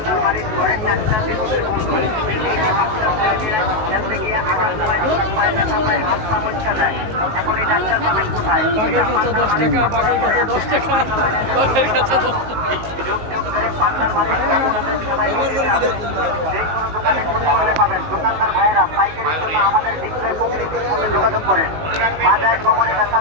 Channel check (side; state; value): left; late; 19 ms